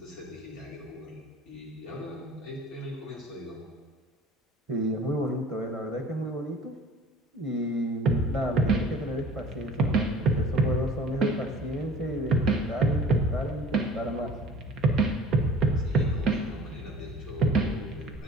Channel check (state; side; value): normal; both; correlation 0.47